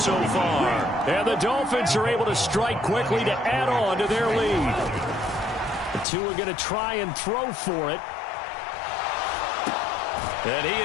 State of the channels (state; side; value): drops out; right; at 6.1 s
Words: far. And the Dolphins are able to strike quickly to add on to their lead. The 2 are going to try and throw for it. And he